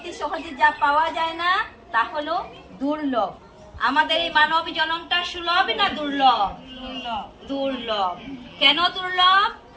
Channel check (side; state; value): both; identical; correlation 1.00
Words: সহজে যা পাওয়া যায় না তা হলো দুর্লভ। আমাদের এই মানব জনমটা সুলভ না দুর্লভ? দুর্লভ। কেন দুর্লভ?